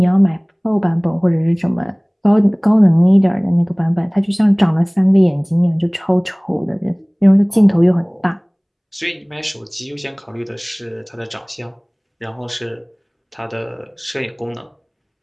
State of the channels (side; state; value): both; identical; correlation 1.00